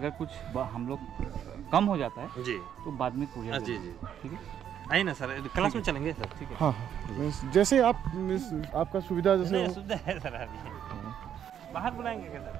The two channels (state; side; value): quieter; left; 9.5 dB